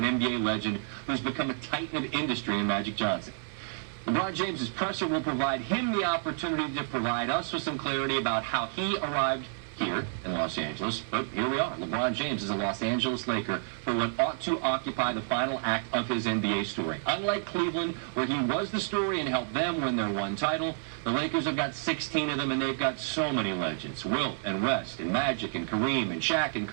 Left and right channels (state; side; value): silent; left; 58 dB below the other